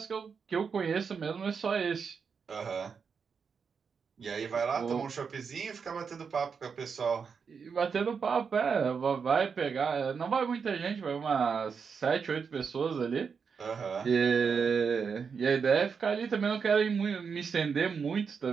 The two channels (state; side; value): quieter; left; 6.0 dB